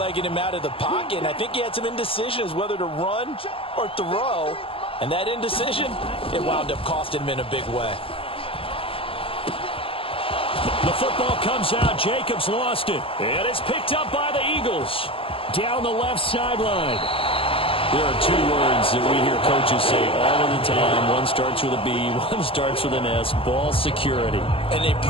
him out of the pocket, and I think he had some indecision as whether to run or throw. And that indecision, it wound up costing him in a big way. The football comes out. Jacobs lost it. And it's picked up by the Eagles. Down the left sideline. There are two words that we hear coaches say all of the time. One starts with a B, one starts with an S. Ball security. And they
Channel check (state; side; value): late; right; 0.26 ms